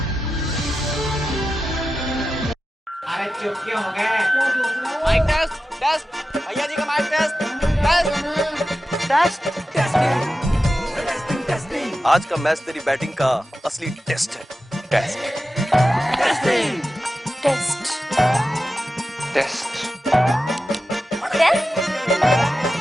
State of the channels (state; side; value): normal; both; correlation 0.92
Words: अरे चुप क्यों हो गए? माइक टेस्ट टेस्ट भैया जी का माइक टेस्ट टेस्ट। आज का मैच तेरी बैटिंग का असली टेस्ट है। टेस्ट टेस्टिंग टेस्ट टेस्ट